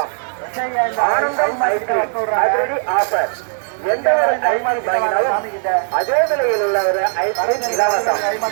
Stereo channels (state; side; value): silent; left; 67 dB below the other